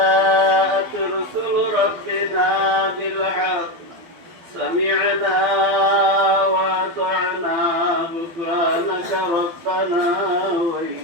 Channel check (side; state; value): left; late; 12 ms